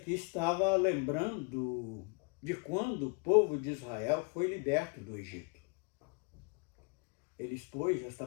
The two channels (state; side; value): quieter; right; 32.8 dB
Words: estava lembrando de quando o povo de Israel foi liberto do Egito. Ele expôs esta